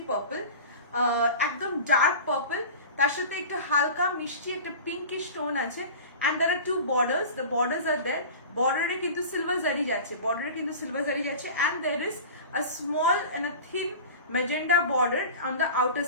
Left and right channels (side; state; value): both; inverted; correlation -0.36